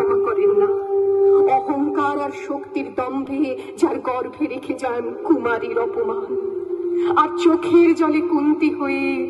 করেন না। অহংকার আর শক্তির দম্ভে যার গর্ভে রেখে যান কুমারীর অপমান, আর চোখের জলে কুন্তি হয়ে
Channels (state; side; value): identical; both; correlation 1.00